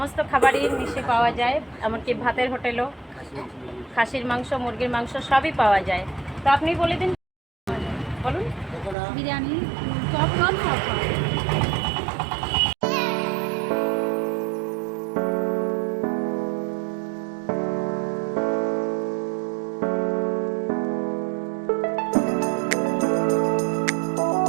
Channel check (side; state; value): left; drops out; at 9.0 s